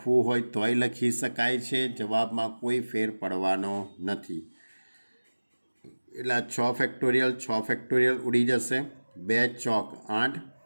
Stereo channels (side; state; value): both; inverted; correlation -1.00